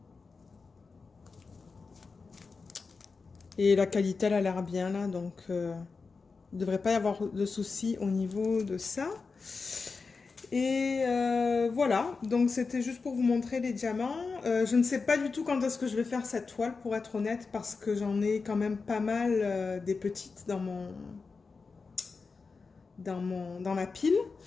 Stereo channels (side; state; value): right; quieter; 4.5 dB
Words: Et la qualité, elle a l'air bien, là. Donc, il ne devrait pas y avoir de soucis au niveau de ça. Et voilà, donc c'était juste pour vous montrer les diamants. Je ne sais pas du tout quand est-ce que je vais faire cette toile, pour être honnête, parce que j'en ai quand même pas mal des petites dans la pile.